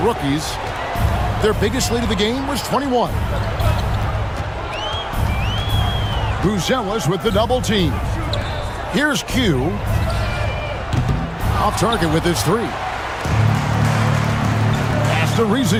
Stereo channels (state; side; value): identical; both; correlation 1.00